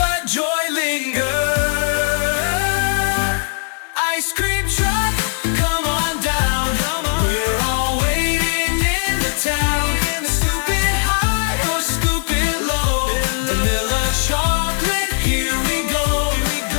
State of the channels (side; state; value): right; silent; digital silence